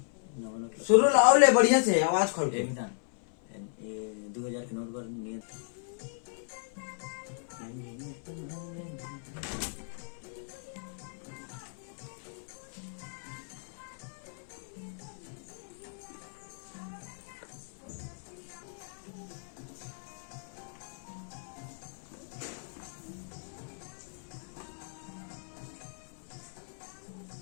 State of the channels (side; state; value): right; silent; 55 dB below the other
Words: शुरू लाओ ले बढ़िया से आवाज खोल के। 2000 के नोट पर नियत